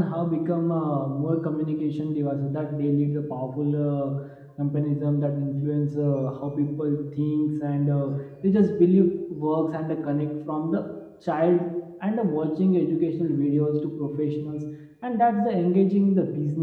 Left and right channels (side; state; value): both; identical; correlation 1.00